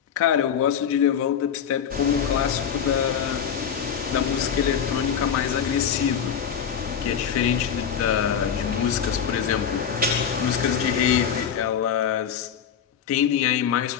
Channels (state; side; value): quieter; right; 8.0 dB